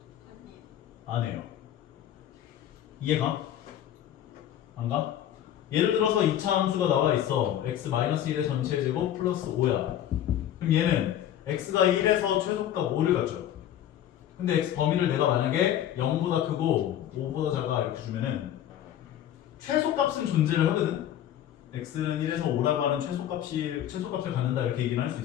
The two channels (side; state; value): right; quieter; 11.2 dB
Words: 안 해요. 이해가? 안 가? 예를 들어서 2차 함수가 나와 있어. x-1의 전체 제곱 플러스 5야. 그럼 얘는 x가 1에서 최소값 5를 갖죠. 근데 x 범위를 내가 만약에 0보다 크고 5보다 작아 이렇게 주면은 최소값은 존재를 하거든. x는 1에서 5라고 하는 최소값을 갖는다 이렇게 얘기는 할 수